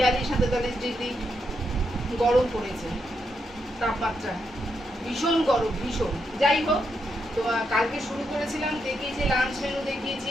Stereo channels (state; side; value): normal; both; correlation 0.81